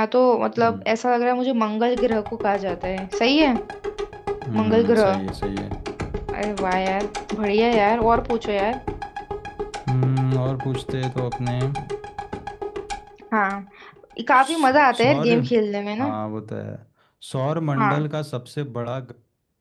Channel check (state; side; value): identical; both; correlation 1.00